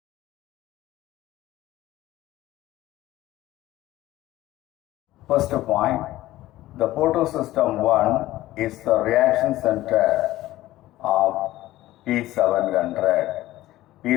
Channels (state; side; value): quieter; right; 15.9 dB